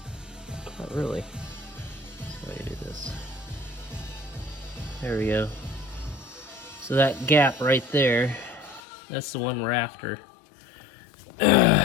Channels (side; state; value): right; drops out; at 8.8 s